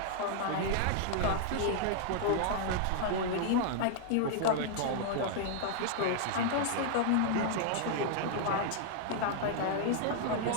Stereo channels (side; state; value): both; different; correlation -0.01